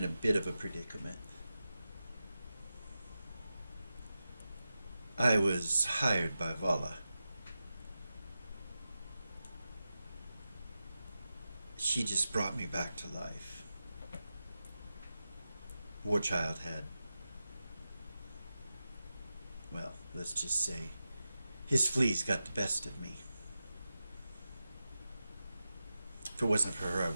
a bit of a predicament. I was hired by Vala. She just brought me back to life. Warchild had, well, let's just say, his fleas got the best of me. If it wasn't for her, I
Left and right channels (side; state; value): both; inverted; correlation -0.92